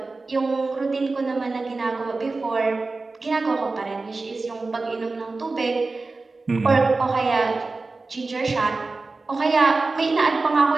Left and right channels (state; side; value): quieter; left; 3.6 dB